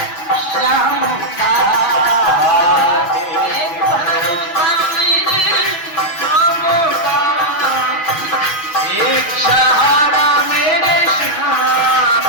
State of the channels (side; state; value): right; late; 6.4 ms